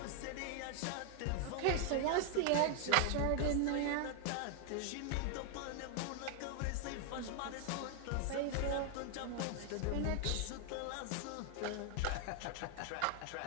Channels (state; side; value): different; both; correlation 0.00